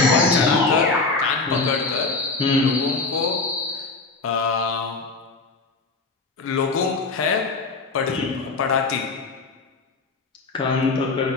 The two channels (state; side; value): quieter; right; 3.9 dB